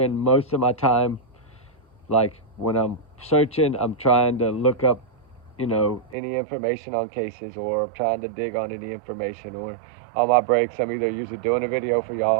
most of my time, like, when I'm searching, I'm trying to look up, you know, any information on cases, or I'm trying to dig on any information, or on my breaks, I'm either usually doing a video for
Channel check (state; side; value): drops out; left; at 6.2 s